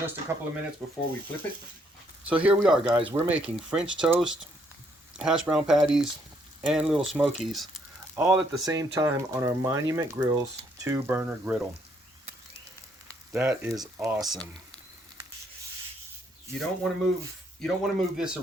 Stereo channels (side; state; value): both; normal; correlation 0.70